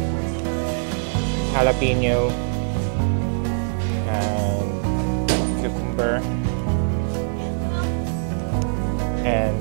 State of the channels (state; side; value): silent; left; 57 dB below the other